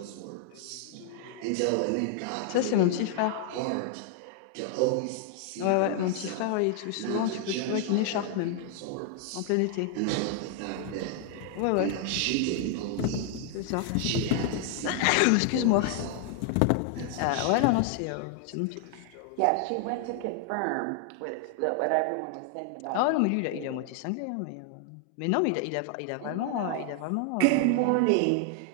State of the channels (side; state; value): both; different; correlation 0.00